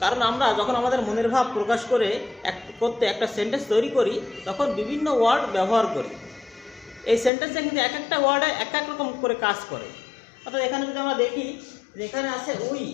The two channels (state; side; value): drops out; right; at 7.3 s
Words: কারণ আমরা যখন আমাদের মনের ভাব প্রকাশ করতে একটা সেন্টেন্স তৈরি করি তখন বিভিন্ন ওয়ার্ড ব্যবহার করি। এই সেন্টেন্সে কিন্তু এক একটা ওয়ার্ডে এক এক রকম করে কাজ করে। অর্থাৎ এখানে যদি আমরা দেখি যে এখানে আছে উই,